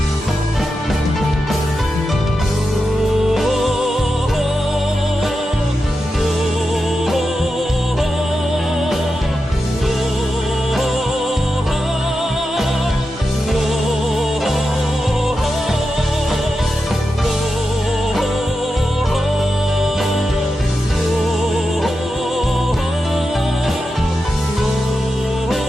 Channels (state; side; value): normal; both; correlation 0.89